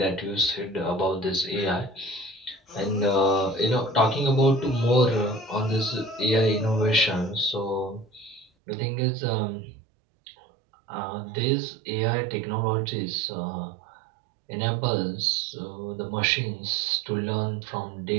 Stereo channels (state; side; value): drops out; left; at 8.5 s